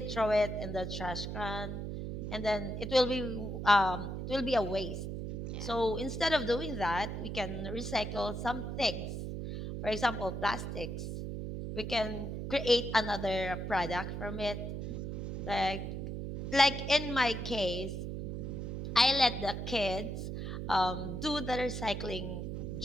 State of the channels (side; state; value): right; noise; hum, 5 dB below the sound